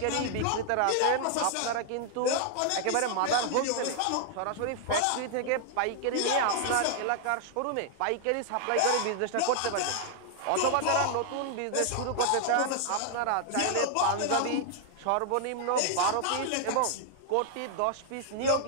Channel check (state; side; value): different; both; correlation 0.00